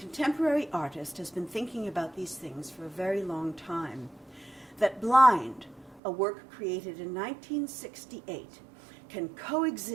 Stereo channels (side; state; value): left; drops out; at 6.0 s